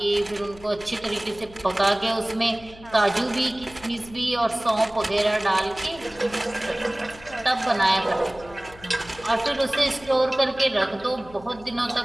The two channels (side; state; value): left; noise; hum, 21 dB below the sound